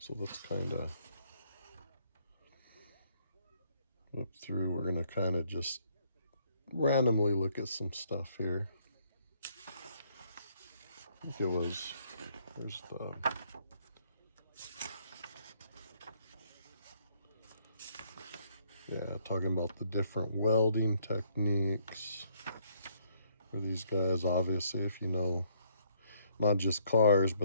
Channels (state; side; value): inverted; both; correlation -0.67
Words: let's kind of flip through. We're going to kind of just randomly look at some stuff here. I think it was, there's the, talking about the different welding techniques for these guys. Obviously, if you know, not just cars,